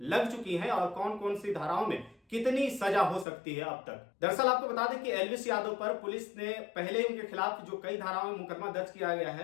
लग चुकी हैं और कौन कौन सी धाराओं में कितनी सजा हो सकती है अब तक। दरअसल आपको बता दें कि एल्विश यादव पर पुलिस ने पहले ही उनके खिलाफ जो कई धाराओं में मुकदमा दर्ज किया गया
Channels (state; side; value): drops out; right; at 3.2 s